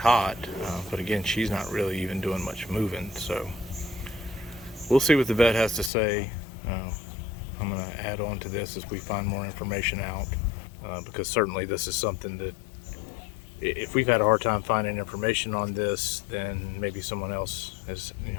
but again, she's not really even doing much moving. So we'll see what the vet has to say. I'm going to add on to this as we find more information out, because certainly this is something that if we've had a hard time finding information on this, then maybe someone else is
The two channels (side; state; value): right; drops out; at 5.9 s